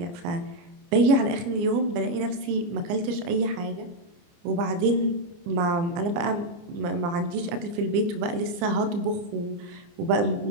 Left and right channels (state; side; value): late; left; 29 ms